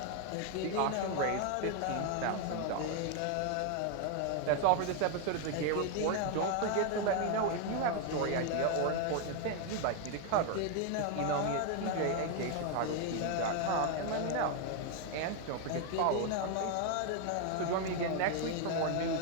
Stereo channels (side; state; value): both; different; correlation 0.01